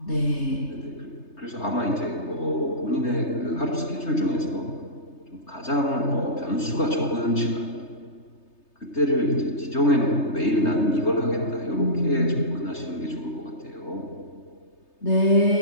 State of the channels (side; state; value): right; late; 3.3 ms